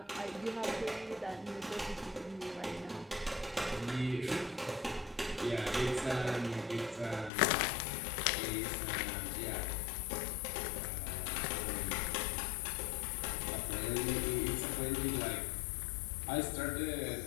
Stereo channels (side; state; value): right; drops out; at 7.3 s